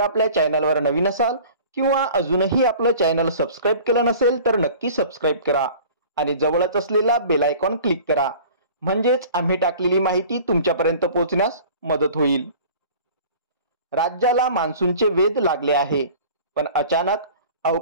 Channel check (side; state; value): both; inverted; correlation -0.44